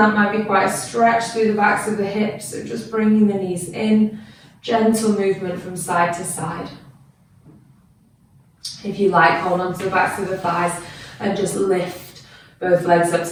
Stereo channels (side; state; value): both; identical; correlation 1.00